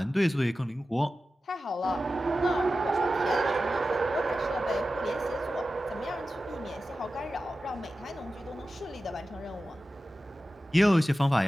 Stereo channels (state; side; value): normal; both; correlation 0.94